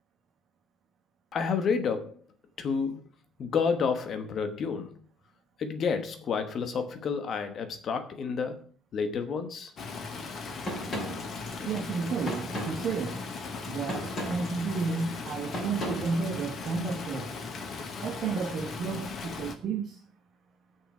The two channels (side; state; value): both; normal; correlation 0.65